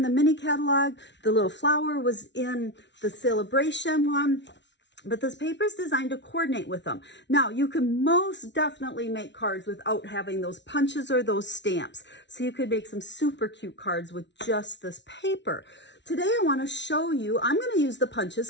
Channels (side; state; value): right; late; 0.51 ms